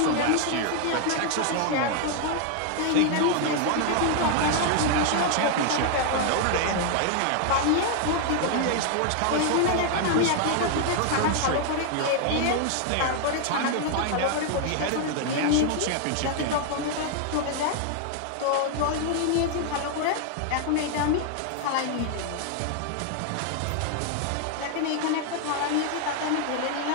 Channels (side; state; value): both; different; correlation 0.00